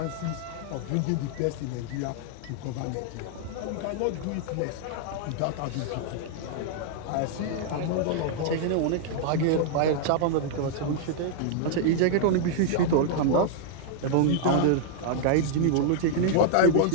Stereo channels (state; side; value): different; both; correlation -0.01